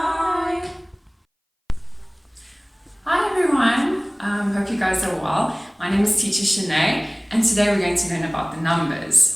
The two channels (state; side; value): identical; both; correlation 1.00